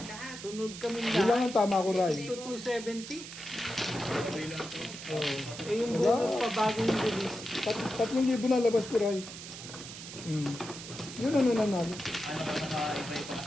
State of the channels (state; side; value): noise; right; hiss, 11 dB below the sound